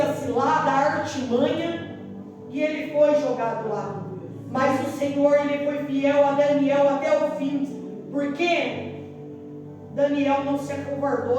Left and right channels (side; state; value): both; identical; correlation 1.00